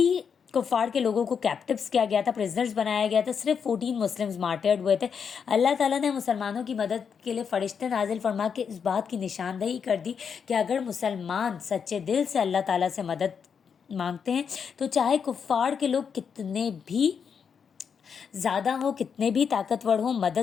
कुफार के लोगों को कैप्टिव्स किया गया था, प्रिजनर्स बनाया गया था। सिर्फ 14 मुस्लिम्स मार्टर्ड हुए थे। अल्लाह ताला ने मुसलमानों की मदद के लिए फ़रिश्ते नाजिल फरमा के इस बात की निशानदही कर दी कि अगर मुसलमान सच्चे दिल से अल्लाह ताला से मदद मांगते हैं तो चाहे कुफार के लोग कितने भी ज़्यादा हो, कितने भी ताकतवर हो,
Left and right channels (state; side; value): quieter; right; 6.7 dB